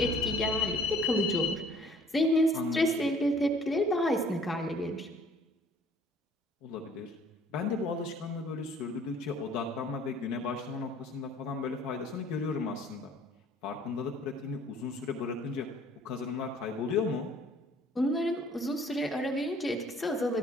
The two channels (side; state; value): both; normal; correlation 0.55